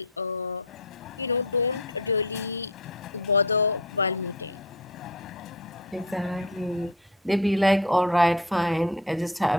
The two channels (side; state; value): both; normal; correlation 0.32